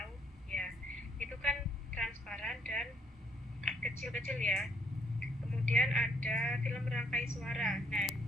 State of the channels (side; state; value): both; normal; correlation 0.68